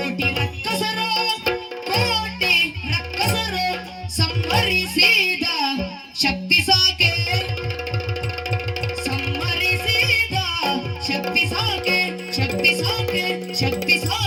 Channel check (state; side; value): identical; both; correlation 1.00